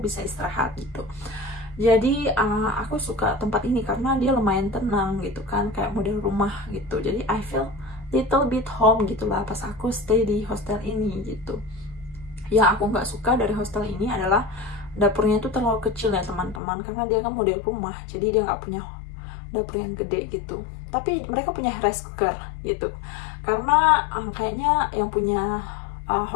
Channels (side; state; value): right; drops out; at 16.6 s